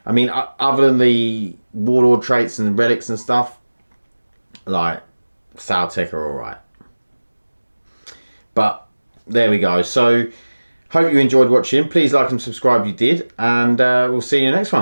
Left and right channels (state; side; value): inverted; both; correlation -1.00